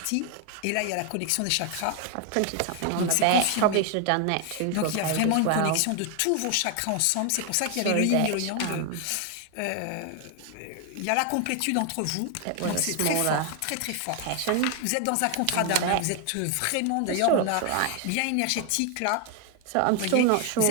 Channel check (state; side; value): different; both; correlation 0.00